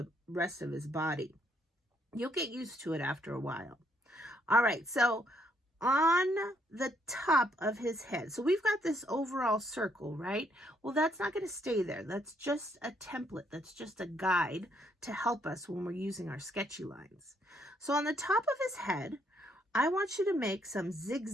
rest of his body. You'll get used to it after a while. All right, so on the top of his head, so we've got this overall circle, right? Well, that's not going to stay there. That's just a template. That's just a guide to help us when we're using our sketchy lines. So on the top of his head, I want you to make some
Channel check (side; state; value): both; normal; correlation 0.71